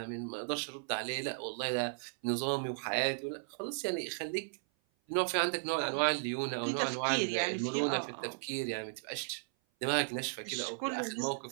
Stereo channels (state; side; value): silent; left; 54 dB below the other